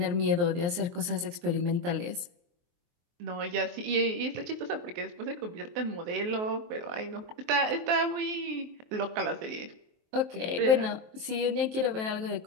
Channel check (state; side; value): late; left; 23 ms